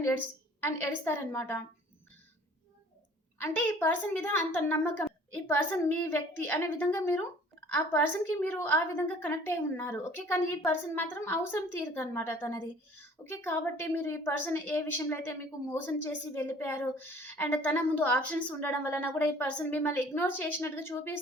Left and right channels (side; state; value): both; normal; correlation 0.51